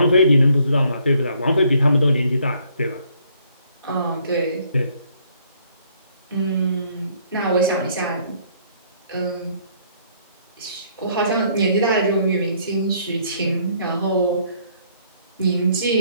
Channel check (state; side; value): inverted; both; correlation -0.65